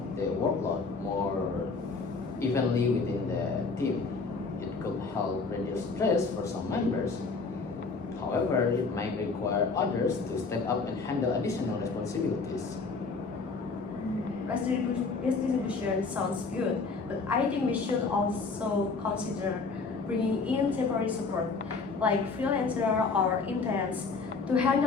the workload more evenly within the team. It could help reduce stress for some members. However, it might require others to step up and handle additional responsibilities. Redistribution sounds good, but I think we should also consider bringing in temporary support, like freelancer or interns, to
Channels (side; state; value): right; quieter; 4.3 dB